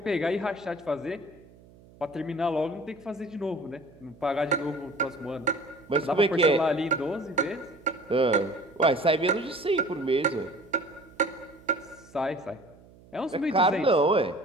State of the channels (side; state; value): right; noise; hum, 24 dB below the sound